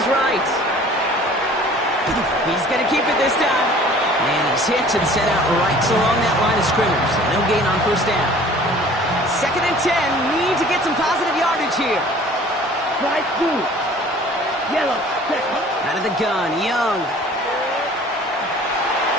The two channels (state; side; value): normal; both; correlation 0.49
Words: right. He's going to keep it this time. And he's hit and set out right along that line of scrimmage. So no gain on 1st down. 2nd and 10, need to get some positive yardage here. Right through. Yellow. Second. Out of the gun, Young.